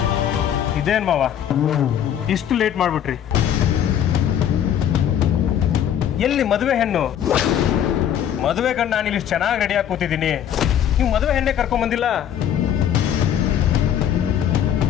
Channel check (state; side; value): quieter; right; 9.8 dB